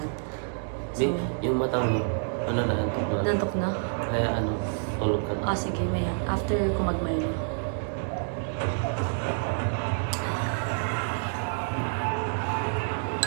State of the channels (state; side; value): silent; left; digital silence